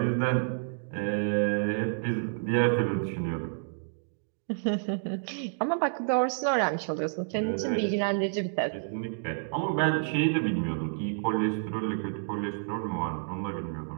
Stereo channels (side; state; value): left; silent; digital silence